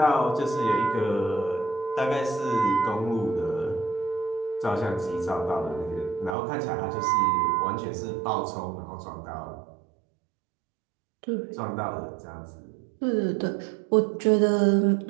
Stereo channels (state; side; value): drops out; left; at 6.4 s